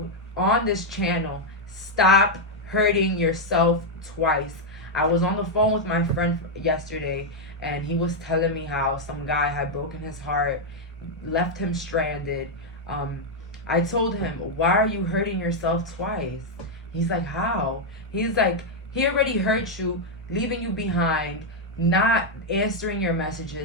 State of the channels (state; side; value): normal; both; correlation 0.00